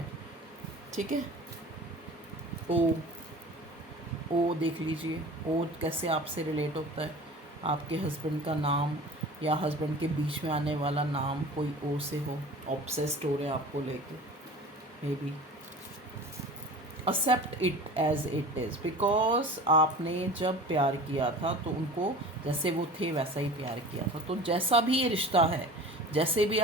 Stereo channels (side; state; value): both; normal; correlation 0.39